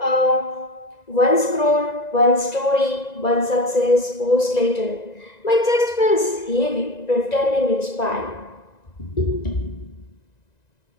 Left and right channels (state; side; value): late; right; 1.9 ms